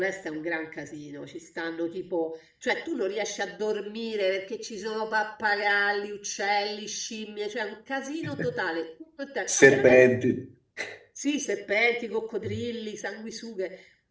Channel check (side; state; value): both; identical; correlation 1.00